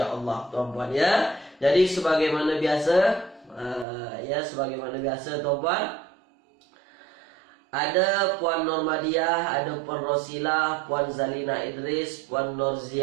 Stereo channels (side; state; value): left; drops out; at 3.9 s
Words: tuan-puan ya. Jadi sebagaimana biasa, tuan-puan, ada Puan Normadiah, ada Puan Rosilah, Puan Zalina Idris, Puan